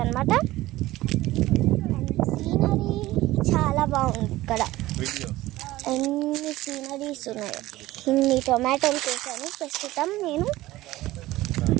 అన్నమాట. సీనరీ చాలా బాగుంది. ఇక్కడ ఎన్ని సీనరీస్ ఉన్నాయి. ఇన్ని టొమాటోలు చేశాను. ప్రస్తుతం నేను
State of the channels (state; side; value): quieter; left; 17.2 dB